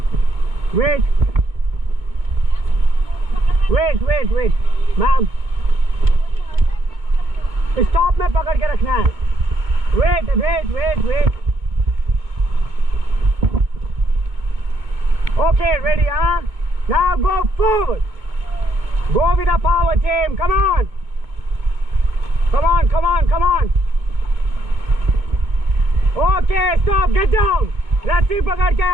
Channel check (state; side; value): late; left; 2.2 ms